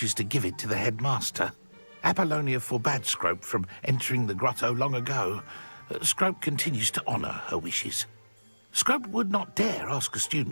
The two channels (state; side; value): inverted; both; correlation -1.00